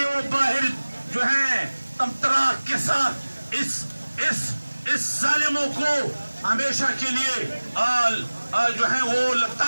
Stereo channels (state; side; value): inverted; both; correlation -1.00